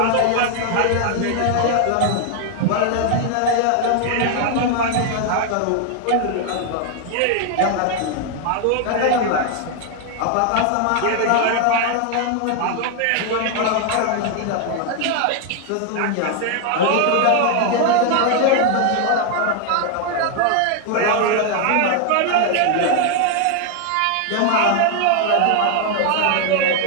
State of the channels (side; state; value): both; different; correlation 0.00